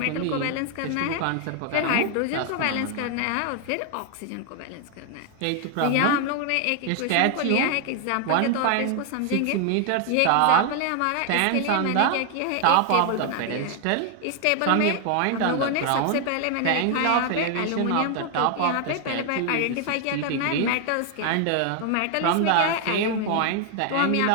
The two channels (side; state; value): both; different; correlation 0.00